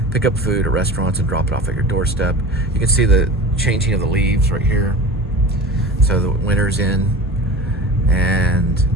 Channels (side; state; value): both; normal; correlation 0.35